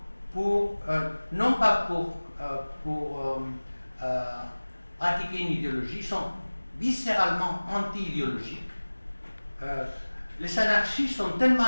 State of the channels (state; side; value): inverted; both; correlation -1.00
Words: pour pratiquer une idéologie, ils sont viscéralement anti-idéologiques. Les anarchistes sont tellement